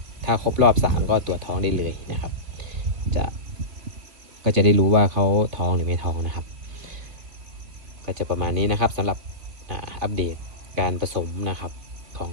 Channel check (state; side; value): late; left; 3.2 ms